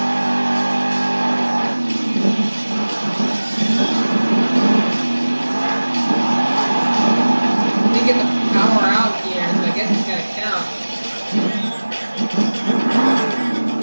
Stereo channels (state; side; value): inverted; both; correlation -1.00